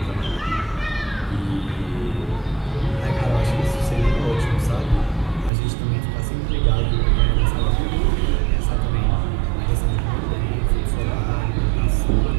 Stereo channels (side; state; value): left; drops out; at 5.5 s